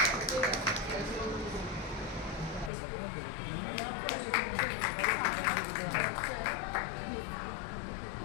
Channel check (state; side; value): drops out; right; at 2.7 s